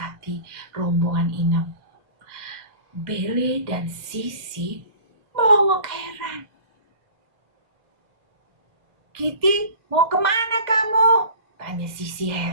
rombongan Inem. Bele dan Sisi melongok heran. Kitty, mau kemana kamu? Tanya Sisi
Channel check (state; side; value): late; left; 2.2 ms